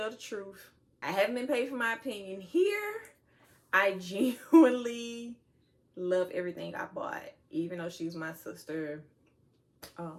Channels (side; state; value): both; identical; correlation 1.00